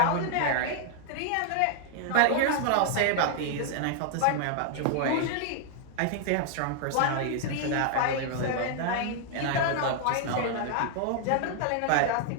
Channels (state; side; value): different; both; correlation 0.00